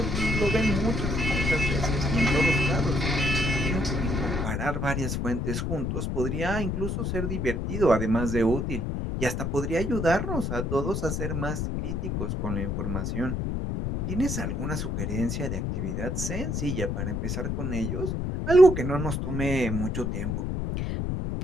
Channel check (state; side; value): noise; left; rumble, 1 dB below the sound